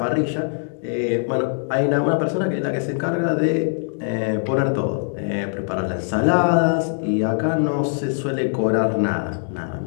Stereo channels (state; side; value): silent; right; digital silence